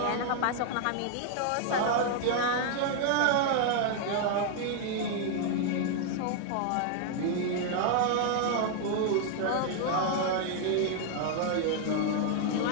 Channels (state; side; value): different; both; correlation 0.00